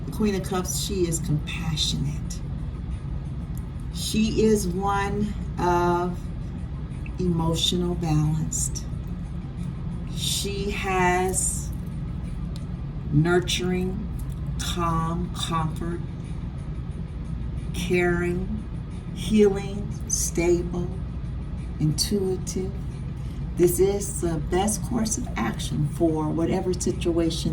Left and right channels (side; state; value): both; identical; correlation 1.00